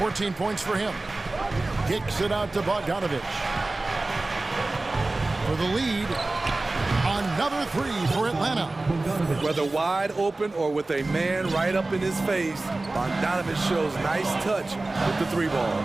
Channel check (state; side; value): quieter; left; 3.1 dB